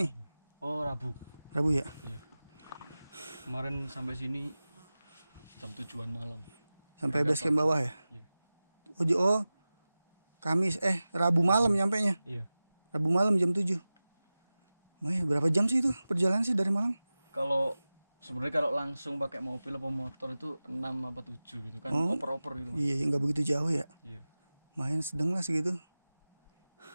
Oh, Rabu. Rabu ya? Iya. Kemarin sampai sini jam 7-an malam. Sampai base camp bawah ya? Iya. Oh, Kamis Rabu malam nyampenya. Iya. Rabu malam jam 7. Berapa jam sih itu perjalanan sih dari Malang? Kalau sebenarnya kalau langsung pakai mobil atau motor itu 6 apa 7 gitu kan. Oh, Oper-oper gitu. Mas. Iya, nggak begitu jauh ya. Iya. Main sedang lah segitu.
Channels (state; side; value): inverted; both; correlation -0.97